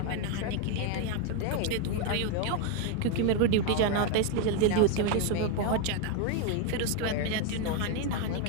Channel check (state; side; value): different; both; correlation 0.01